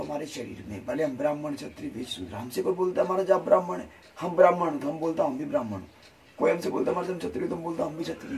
शरीर में। भले हम ब्राह्मण क्षत्रिय वैश्य शूद्र, हमसे कोई बोलता है हमारा जाप ब्राह्मण है, हम ब्राह्मण तो हम बोलता हम भी ब्राह्मण हूँ। कोई हमसे बोलता हमारे से क्षत्रिय तो हम बोलता हम भी क्षत्रिय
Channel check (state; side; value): identical; both; correlation 1.00